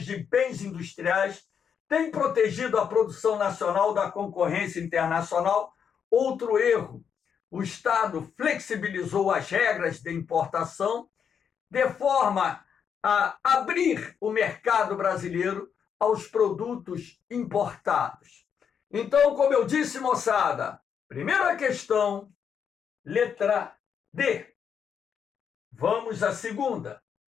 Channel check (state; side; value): quieter; right; 7.4 dB